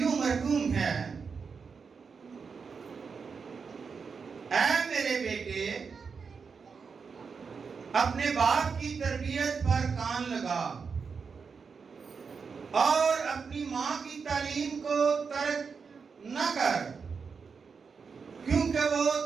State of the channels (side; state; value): left; quieter; 5.5 dB